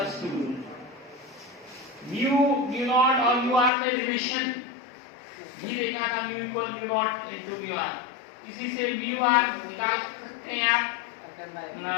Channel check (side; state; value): right; drops out; at 3.7 s